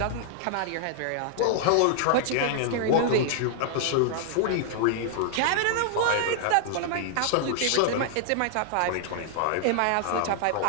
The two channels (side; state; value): both; different; correlation -0.01